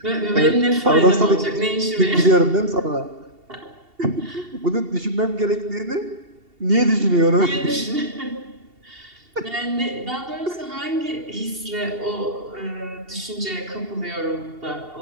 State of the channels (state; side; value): late; left; 2.7 ms